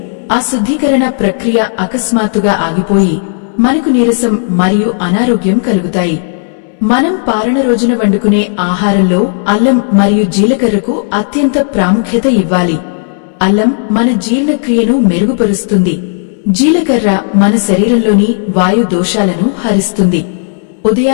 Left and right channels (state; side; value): silent; right; digital silence